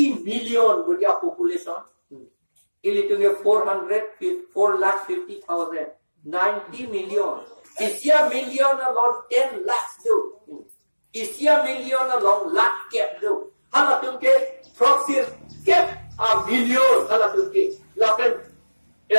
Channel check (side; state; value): both; inverted; correlation -1.00